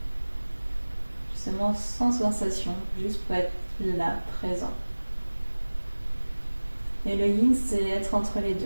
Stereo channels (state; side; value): inverted; both; correlation -1.00